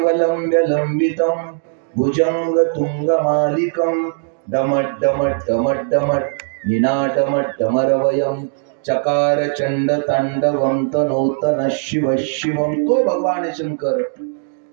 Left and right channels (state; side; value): silent; left; digital silence